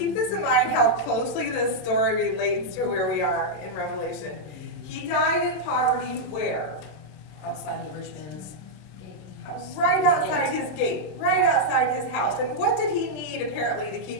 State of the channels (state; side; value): late; right; 27 ms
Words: this in mind how closely this story relates to where we are in Revelation. He died in poverty where? Outside the rich man's house. Right outside his gate, right outside his house. And what did he need apparently to